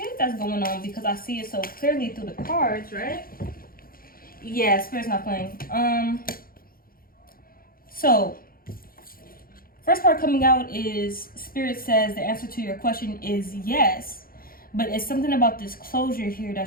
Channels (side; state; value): right; late; 0.42 ms